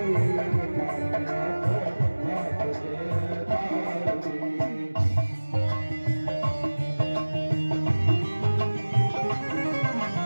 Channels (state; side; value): inverted; both; correlation -1.00